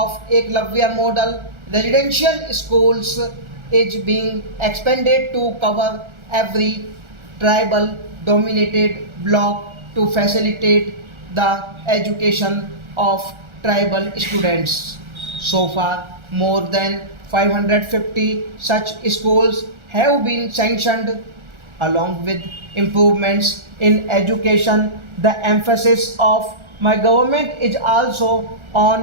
Eklavya model residential schools is being expanded to cover every tribal dominated block to facilitate the education of tribal students. So far, more than 550 such schools have been sanctioned. Along with improvements in education, the emphasis of my government is also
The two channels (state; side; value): late; left; 1.4 ms